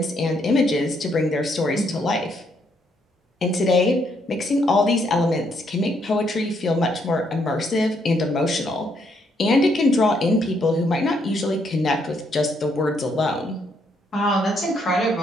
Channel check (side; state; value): both; normal; correlation 0.73